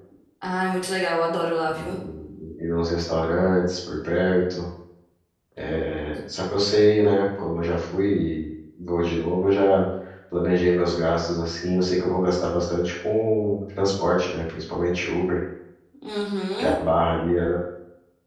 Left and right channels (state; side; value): identical; both; correlation 1.00